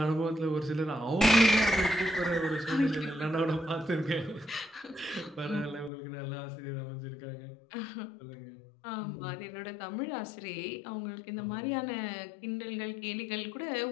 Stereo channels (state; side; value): drops out; right; at 5.9 s